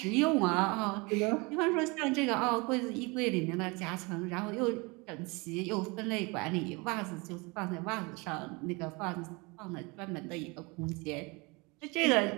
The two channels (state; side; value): quieter; left; 27.2 dB